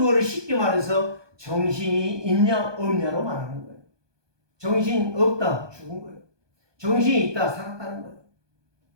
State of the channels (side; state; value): left; late; 1.2 ms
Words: 쉽게 말해서 정신이 있냐 없냐로 말하는 거예요. 정신 없다 죽은 거예요. 정신이 있다 살았다는 거예요.